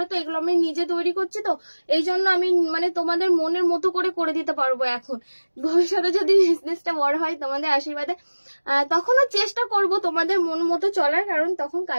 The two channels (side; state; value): both; inverted; correlation -1.00